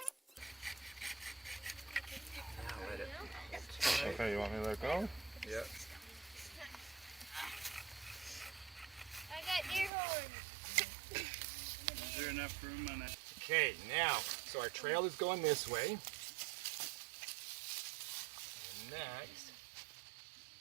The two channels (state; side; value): drops out; left; at 9.9 s